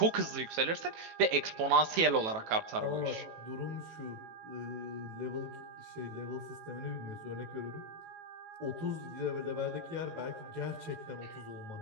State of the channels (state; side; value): late; left; 18 ms